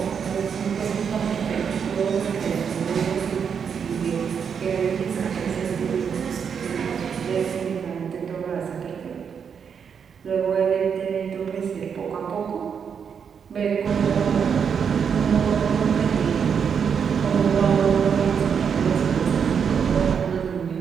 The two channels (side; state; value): left; quieter; 7.0 dB